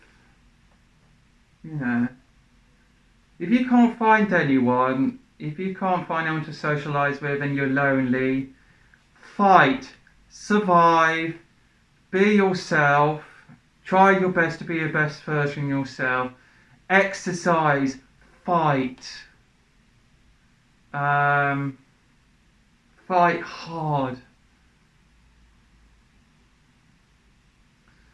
If you can't find anyone, if you can't find anyone to socialise with and you're lonely, fight, survive, be yourself, try your best to be your best version of yourself, exercise, fight, fight hard.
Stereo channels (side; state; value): both; identical; correlation 1.00